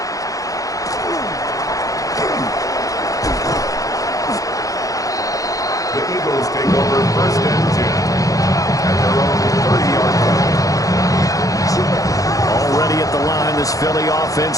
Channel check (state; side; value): late; right; 0.17 ms